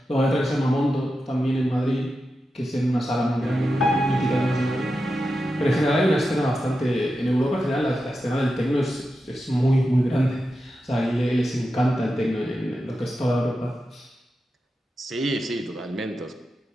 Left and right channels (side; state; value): both; normal; correlation 0.90